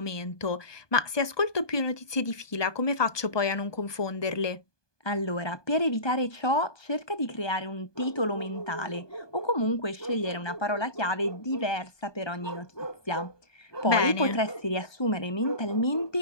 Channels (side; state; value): right; late; 1.2 ms